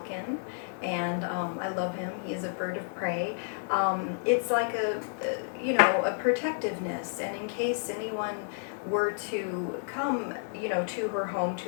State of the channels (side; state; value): right; silent; 57 dB below the other